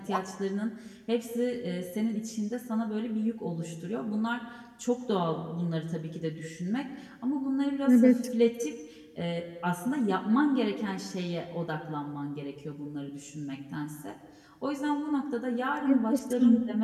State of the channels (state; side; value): identical; both; correlation 1.00